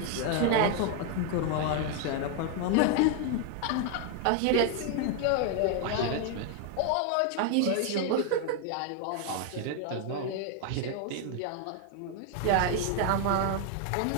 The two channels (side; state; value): both; different; correlation 0.00